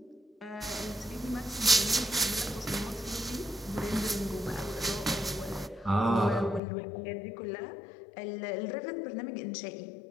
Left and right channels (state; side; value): drops out; right; at 6.6 s